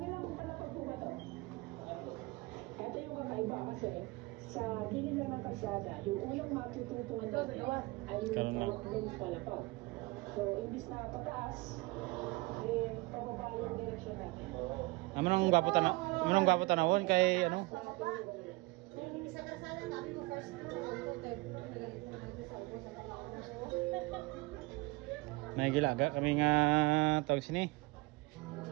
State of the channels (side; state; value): left; quieter; 23.5 dB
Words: Ito yung kakaiba kasi sa gilid lang ng kalsada, yung unang matututuan natin ay yung lens palapag. So, imbis na pataas, pababa yung direksyon natin. Amanong gwapo tanawon kay ano? May gilaga kami nga tawag sini.